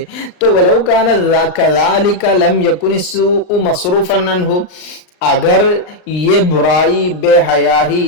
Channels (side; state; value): right; late; 39 ms